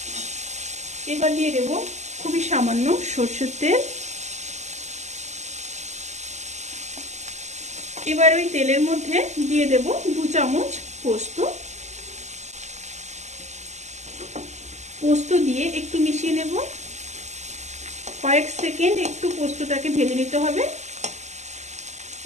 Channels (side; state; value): left; late; 0.33 ms